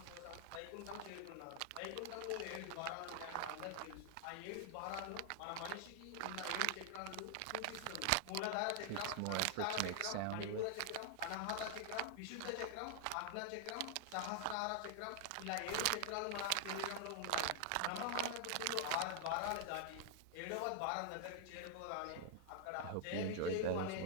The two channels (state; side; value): different; both; correlation 0.00